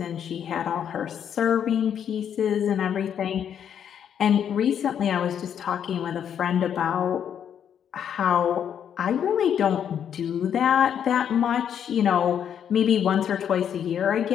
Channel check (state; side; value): quieter; right; 8.7 dB